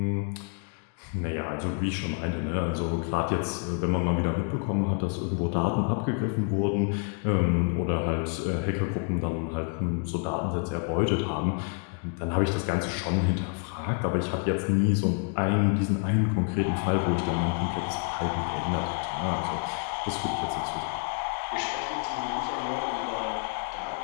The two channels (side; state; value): right; quieter; 38.6 dB